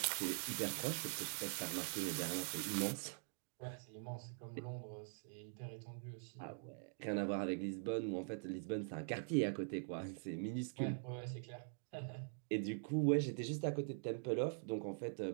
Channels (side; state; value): left; silent; digital silence